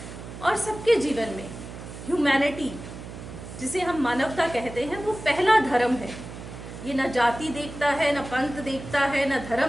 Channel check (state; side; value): noise; right; hum, 12 dB below the sound